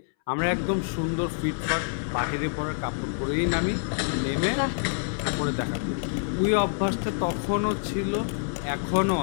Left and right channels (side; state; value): right; silent; 60 dB below the other